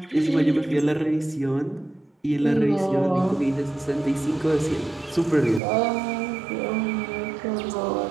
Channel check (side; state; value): left; drops out; at 5.6 s